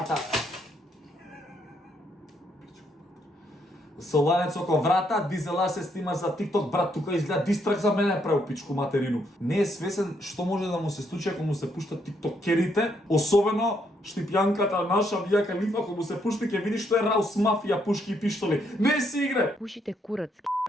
Со ланец околу врата, дизелаш се снимаш за TikTok, брат, тука изгледа дистрак за мене право пичку материну. Не е свесен што може да му се случи ако му се пуштат тиктокерите, особено Штипјанката наша Мија Калифа, ако му се пушти ќе видиш што е Раус мафија, пушки и пиштоли. Не си игре. Пушите курац.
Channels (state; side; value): normal; both; correlation 0.74